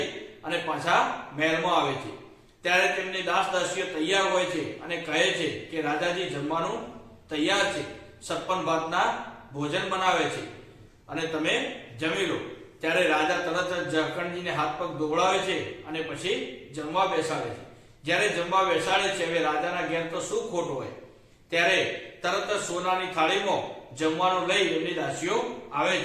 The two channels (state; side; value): identical; both; correlation 1.00